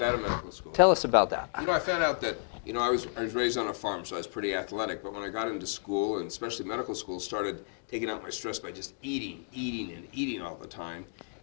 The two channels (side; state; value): right; silent; digital silence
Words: out of medical school. Tell us about that. You know, I found out that, I was raised on a farm, so I was pretty athletic, but when I got into school, and especially medical school, started taking out my stress by just eating all the time.